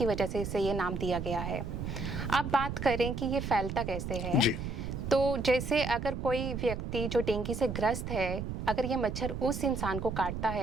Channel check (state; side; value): noise; right; rumble, 5 dB below the sound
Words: वजह से इसे ये नाम दिया गया है। अब बात करें कि ये फैलता कैसे है, तो जैसे अगर कोई व्यक्ति जो डेंगी से ग्रस्त है, अगर ये मच्छर उस इंसान को काटता